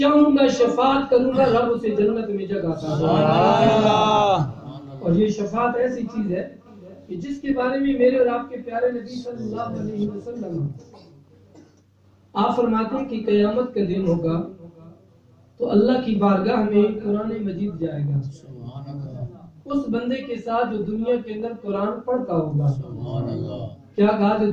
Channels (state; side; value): identical; both; correlation 1.00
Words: گا شفاعت کروں گا، رب اسے جنت میں جگہ عطا کرے گا۔ اور یہ شفاعت ایسی چیز ہے کہ جس کے بارے میں میرے اور آپ کے پیارے نبی صلی اللہ علیہ وسلم آپ فرماتے ہیں کہ قیامت کا دن ہوگا تو اللہ کی بارگاہ میں قرآن مجید جائے گا، اس بندے کے ساتھ جو دنیا کے اندر قرآن پڑھتا ہوگا، کیا کہا؟ جو